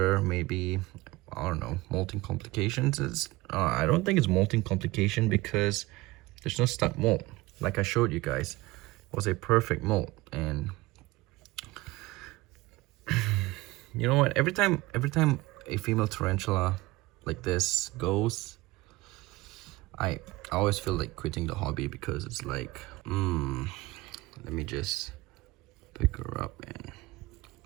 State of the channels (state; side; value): quieter; left; 20.3 dB